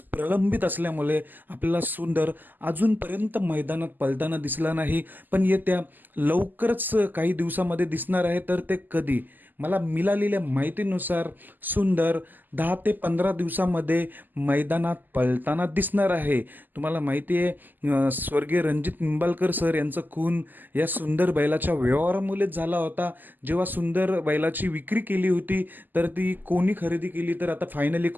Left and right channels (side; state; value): left; late; 0.087 ms